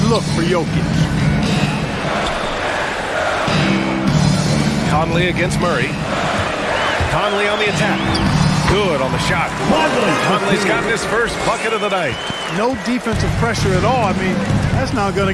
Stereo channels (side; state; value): both; identical; correlation 1.00